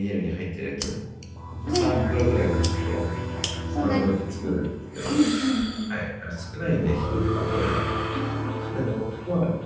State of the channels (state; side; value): identical; both; correlation 1.00